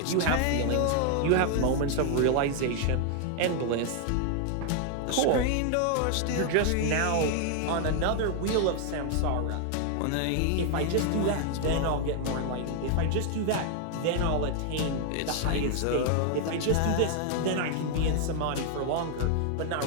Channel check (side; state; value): both; different; correlation 0.00